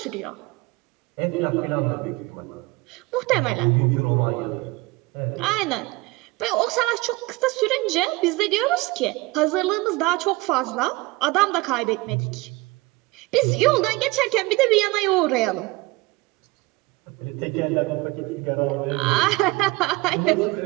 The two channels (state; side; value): quieter; left; 21.6 dB